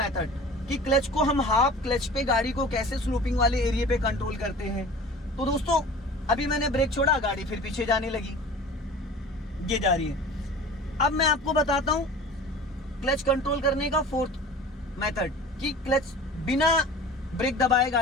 कि क्लच को हम हाफ क्लच पे गाड़ी को कैसे स्लोपिंग वाले एरिया पे कंट्रोल करते हैं। तो दोस्तों अभी मैंने ब्रेक छोड़ा, गाड़ी फिर पीछे जाने लगी, ये जा रही है। अब मैं आपको बताता हूं क्लच कंट्रोल करने का फोर्थ मेथड कि क्लच बिना ब्रेक दबाए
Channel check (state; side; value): normal; both; correlation 0.41